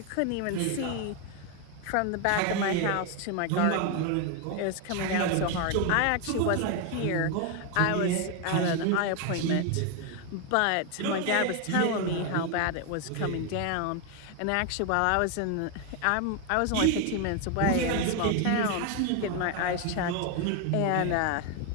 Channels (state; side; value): different; both; correlation 0.01